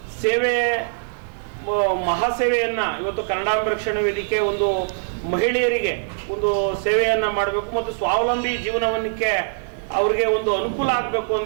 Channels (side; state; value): left; silent; digital silence